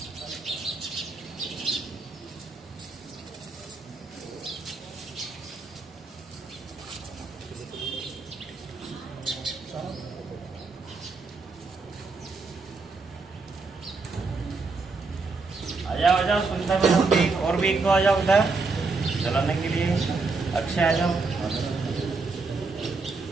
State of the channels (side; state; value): left; quieter; 4.0 dB